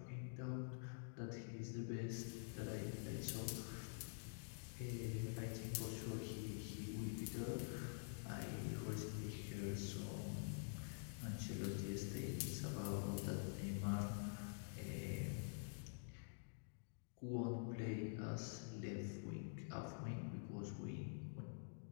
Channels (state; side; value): silent; right; digital silence